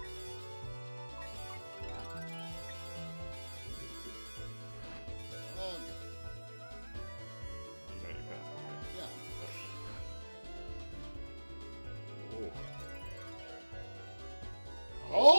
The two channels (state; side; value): inverted; both; correlation -1.00